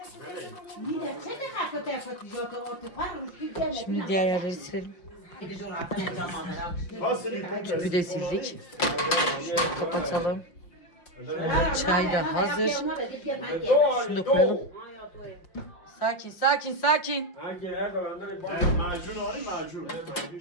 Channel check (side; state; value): right; late; 5.7 ms